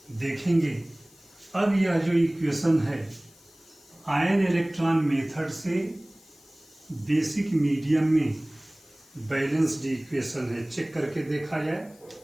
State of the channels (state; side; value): noise; left; hiss, 27 dB below the sound